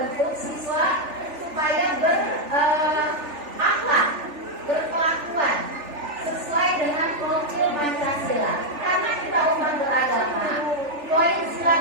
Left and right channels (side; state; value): left; late; 3.4 ms